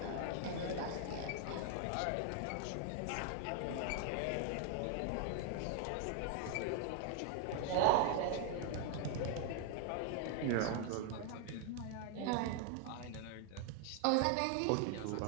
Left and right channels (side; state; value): both; different; correlation 0.00